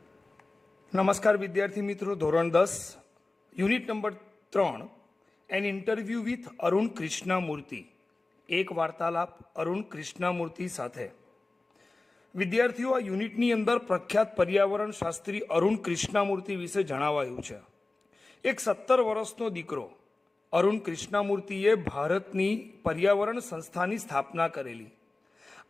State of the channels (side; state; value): right; quieter; 3.2 dB